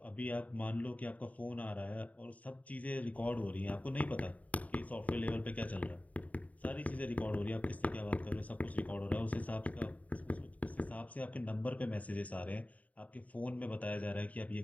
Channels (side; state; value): right; late; 0.071 ms